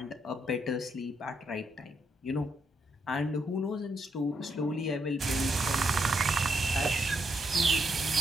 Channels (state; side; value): normal; both; correlation 0.77